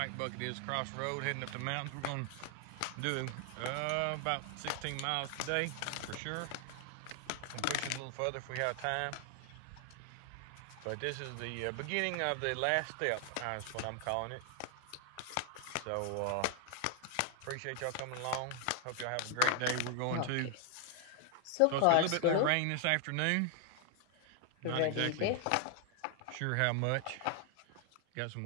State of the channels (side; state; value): both; different; correlation 0.00